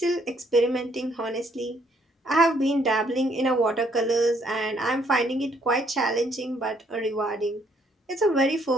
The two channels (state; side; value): normal; both; correlation 0.67